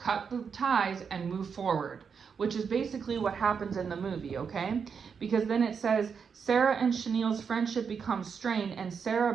the ties and move forward, which is basically what happens in the movie, okay? Because then it says, Sarah and Chenille's friendship becomes strained, and Sarah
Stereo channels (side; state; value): left; quieter; 6.3 dB